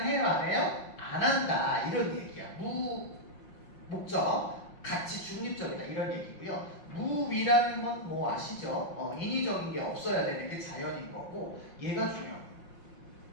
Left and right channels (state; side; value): late; right; 6.0 ms